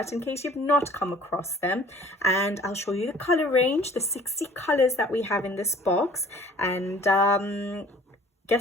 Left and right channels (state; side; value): normal; both; correlation 0.51